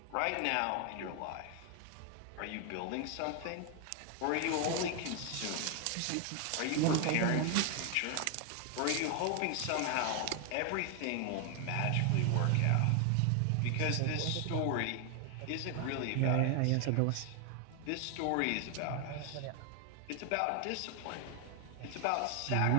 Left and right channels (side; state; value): both; different; correlation 0.00